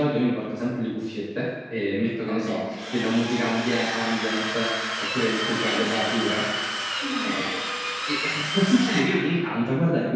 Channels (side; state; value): both; identical; correlation 1.00